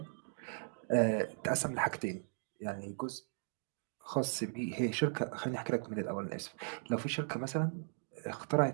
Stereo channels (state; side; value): silent; left; digital silence